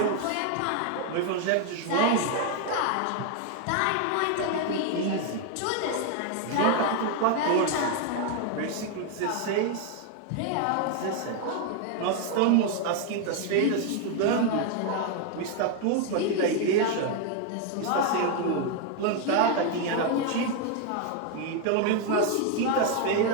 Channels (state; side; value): different; both; correlation 0.01